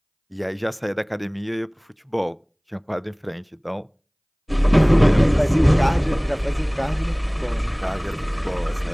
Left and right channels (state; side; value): identical; both; correlation 1.00